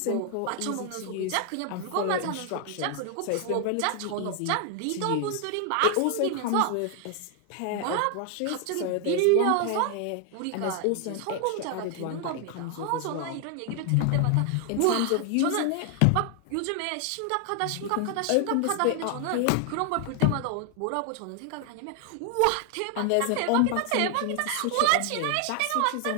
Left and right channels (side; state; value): both; different; correlation 0.00